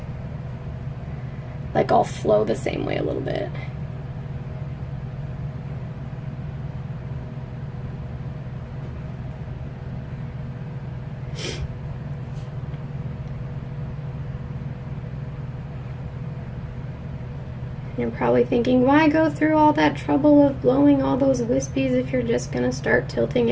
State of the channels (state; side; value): identical; both; correlation 1.00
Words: like all flow the same way a little bit. You're probably thinking, why go through all that trouble of blowing all those wispies if you're just gonna start tilting